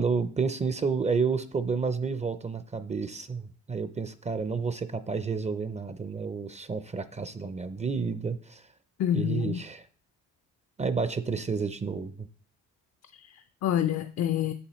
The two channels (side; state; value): both; normal; correlation 0.56